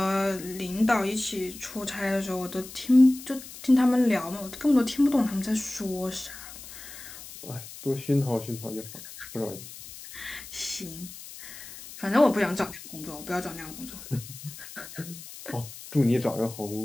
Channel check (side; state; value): left; noise; hiss, 14 dB below the sound